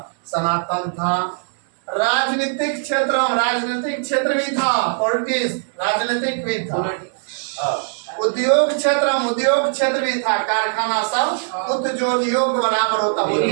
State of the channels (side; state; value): left; silent; digital silence